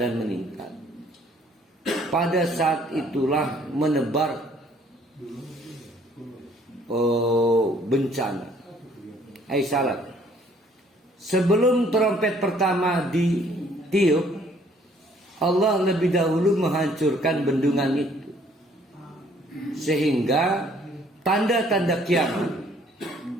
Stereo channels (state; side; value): normal; both; correlation 0.61